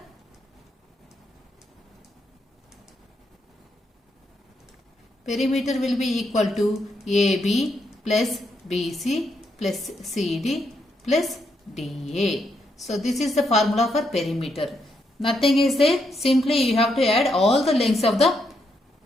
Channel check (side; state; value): both; normal; correlation 0.79